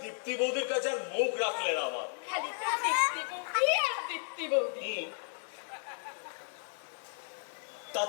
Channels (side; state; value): right; silent; 55 dB below the other